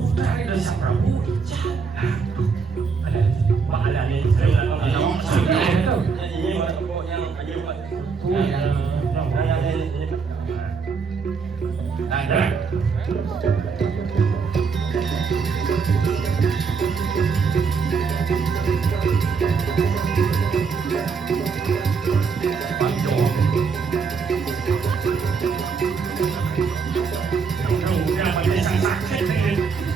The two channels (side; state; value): left; quieter; 5.4 dB